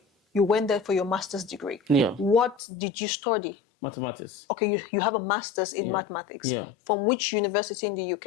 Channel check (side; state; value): right; drops out; at 2.6 s